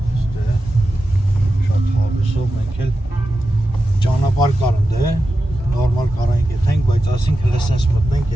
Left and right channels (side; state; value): both; normal; correlation 0.91